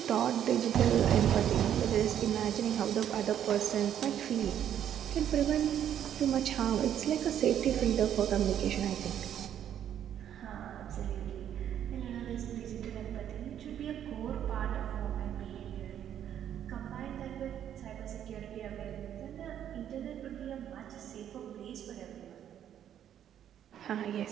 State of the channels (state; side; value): quieter; left; 10.0 dB